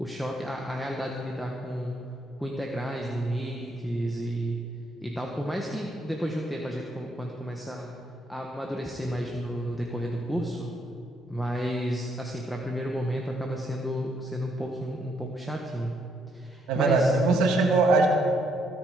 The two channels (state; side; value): normal; both; correlation 0.73